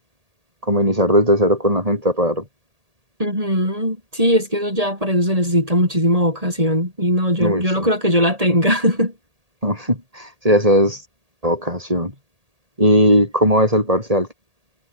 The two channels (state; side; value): late; left; 1.8 ms